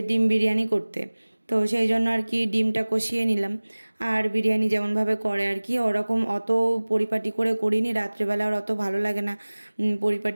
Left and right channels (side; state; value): both; inverted; correlation -1.00